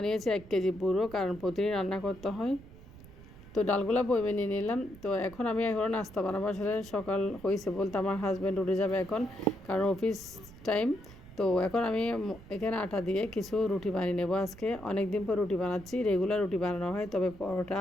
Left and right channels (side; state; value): right; noise; rumble, 19 dB below the sound